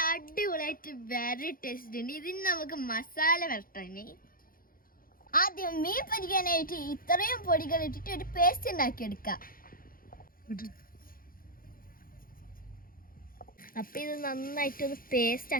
അടിപൊളിയായിട്ട് വെരി ടേസ്റ്റ് ഉണ്ട്. ഇതിന് നമുക്ക് മസാല വരട്ടണേ. ആദ്യം മീൻ പൊരിക്കാനായിട്ട് ഇത്രയും പൊടികൾ ഇട്ടിട്ട് ഒരു പേസ്റ്റ് ഉണ്ടാക്കിയെടുക്കാം. അപ്പം ഇത് നന്നായിട്ടൊന്ന് പേസ്റ്റ്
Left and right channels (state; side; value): late; right; 0.42 ms